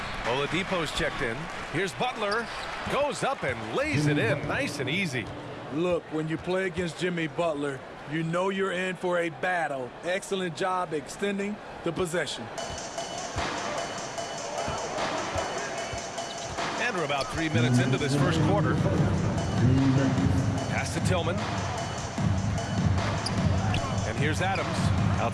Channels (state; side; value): identical; both; correlation 1.00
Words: Oladipo's checked in. Here's Butler. Goes up and lays it in. Nice and easy. Look, when you play against Jimmy Butler, you know you're in for a battle. Excellent job extending the possession. And we're about 3 minutes into this first quarter. Pass to Tillman. And here's Adams.